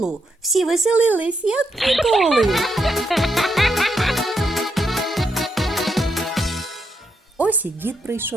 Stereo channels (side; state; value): both; normal; correlation 0.81